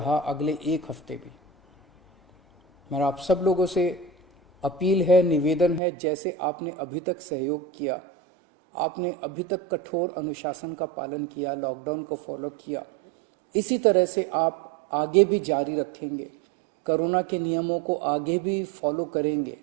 अगले 1 हफ्ते भी, मेरा आप सब लोगों से अपील है, निवेदन है, जैसे आपने अभी तक सहयोग किया, आपने अभी तक कठोर अनुशासन का पालन किया, लॉकडाउन को फॉलो किया, इसी तरह से आप आगे भी जारी रखेंगे, कोरोना के नियमों को आगे भी फॉलो करेंगे।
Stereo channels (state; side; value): drops out; left; at 5.8 s